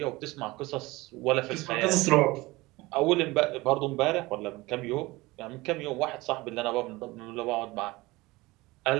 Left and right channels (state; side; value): quieter; left; 21.2 dB